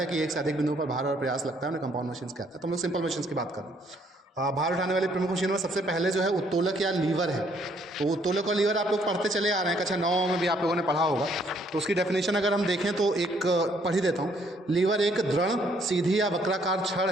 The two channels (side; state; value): both; normal; correlation 0.66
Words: कि एक से अधिक बिंदुओं पर भार और प्रयास लगता है, उन्हें कंपाउंड मशीन्स कहते हैं। तो हम लोग सिंपल मशीन्स की बात करें। भार उठाने वाली प्रमुख मशीनों में सबसे पहले जो है उत्तोलक या लीवर है। तो उत्तोलक और लीवर आप लोग पढ़ते चले आ रहे हैं, कक्षा 9 में भी आप लोगों ने पढ़ा होगा। तो उसकी डेफिनेशन अगर हम देखें तो एक पढ़ ही देता हूँ। लीवर एक दृढ़, सीधी या वक्राकार छड़